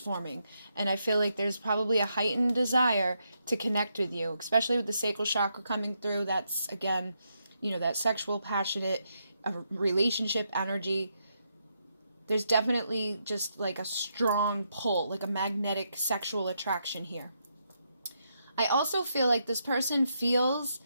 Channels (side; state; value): both; inverted; correlation -0.80